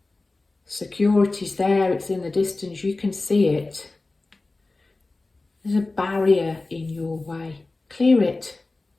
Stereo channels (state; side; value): quieter; right; 3.3 dB